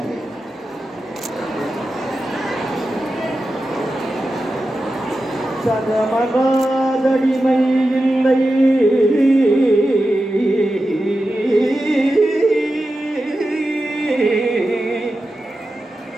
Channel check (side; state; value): both; normal; correlation 0.92